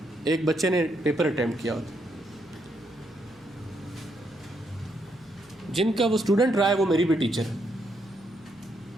ایک بچے نے پیپر اٹیمپٹ کیا ہوتا, جن کا وہ اسٹوڈنٹ رہا ہے وہ میری بھی ٹیچر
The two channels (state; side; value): noise; left; hum, 28 dB below the sound